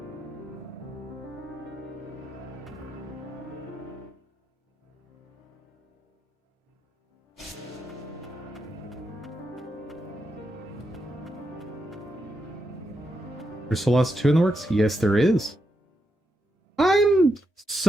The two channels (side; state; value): both; normal; correlation 0.83